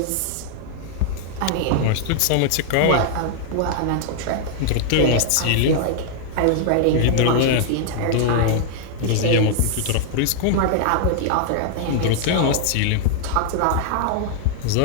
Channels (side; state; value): both; different; correlation 0.00